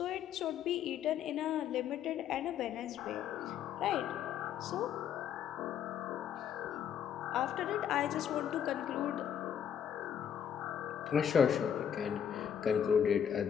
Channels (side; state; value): right; quieter; 8.9 dB